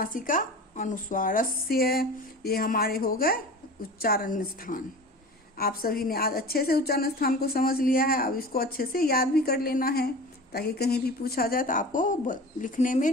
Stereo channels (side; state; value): both; normal; correlation 0.36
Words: अनुस्वारस्य। ये हमारे हो गए उच्चारण स्थान। आप सभी ने आज अच्छे से उच्चारण स्थान को समझ लिया है। अब इसको अच्छे से याद भी कर लेना है, ताकि कहीं भी पूछा जाए तो आपको लिखने में,